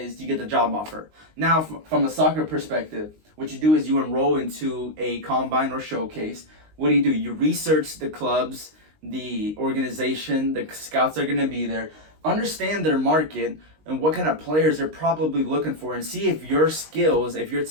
you get the job offer. Now, from a soccer perspective, what you do is you enroll into a combine or showcase. What do? You research the clubs, the organization, the scouts are going to be there, understand their market and what kind of players they're probably looking for, and see if your skills, if your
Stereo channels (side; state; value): left; late; 19 ms